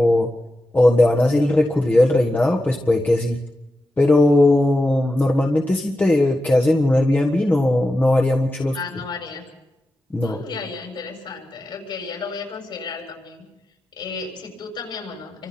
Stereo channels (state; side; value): normal; both; correlation 0.91